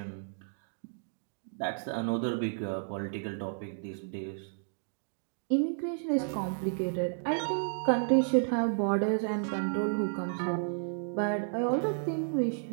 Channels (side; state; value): left; silent; digital silence